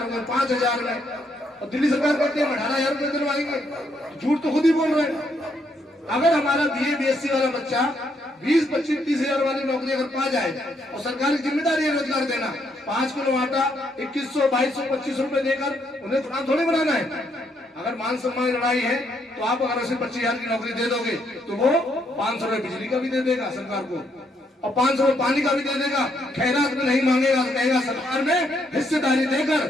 में, 5,000 में, और दिल्ली सरकार कहती है 18,000 रुपये दिलवाएंगे। झूठ तो खुद ही बोल रहे हैं। अगर हमारा बीए बीएससी वाला बच्चा 20, 25, 30,000 वाली नौकरी अगर पा जाए, और सरकार की जिम्मेदारी है रोजगार देना, 5 किलो आटा 2100, 2200, 2500 रुपए देकर उन्हें गुलाम थोड़ी बनाना है। अगर मान सम्मान लड़ाई है तो आप अगर उसे 25,000 की नौकरी दे दोगे तो वो 500 रुपए बिजली का भी दे देगा सरकार को, और 500 रुपए पानी का भी दे देगा। खैरात में नहीं मांगेगा तो कहेगा सरकार में हिस्सेदारी देकर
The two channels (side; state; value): both; normal; correlation 0.74